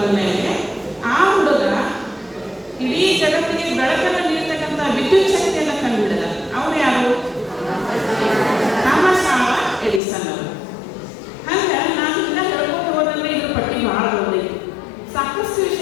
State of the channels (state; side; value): drops out; right; at 10.0 s